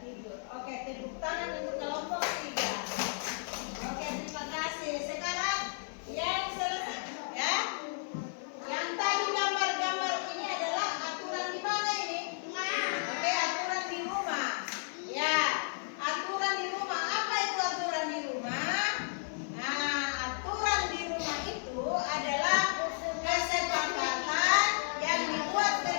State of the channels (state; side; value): silent; right; 56 dB below the other